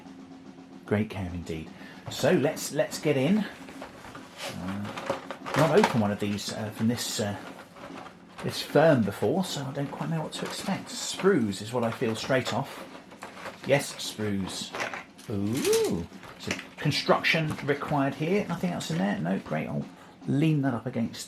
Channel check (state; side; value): identical; both; correlation 1.00